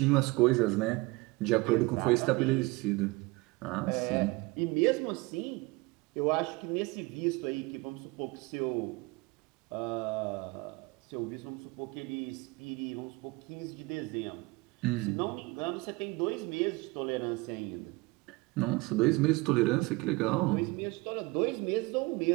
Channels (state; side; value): quieter; left; 23.9 dB